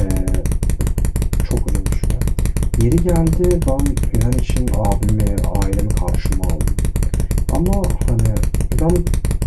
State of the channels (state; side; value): identical; both; correlation 1.00